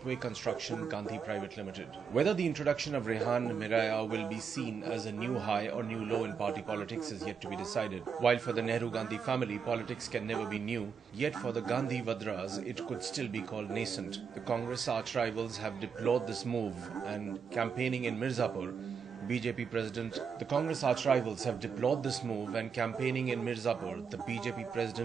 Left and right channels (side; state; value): left; quieter; 6.4 dB